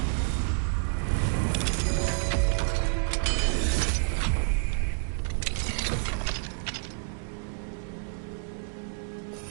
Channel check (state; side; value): silent; left; digital silence